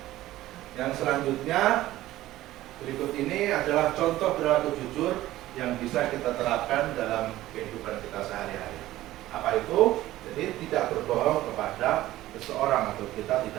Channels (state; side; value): quieter; left; 15.5 dB